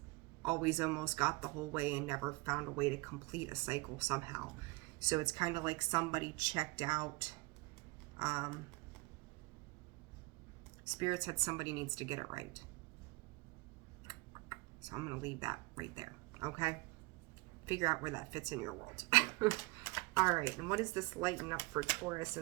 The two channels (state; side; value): quieter; left; 24.0 dB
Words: always almost got the whole way and never found a way to complete a cycle somehow. So it's kind of like somebody checked out. Spirit said somebody needs to get it right. So I'm going to leave that right there, okay? Figure out where that fits in your world. All right, and what does this lighten up for Taurus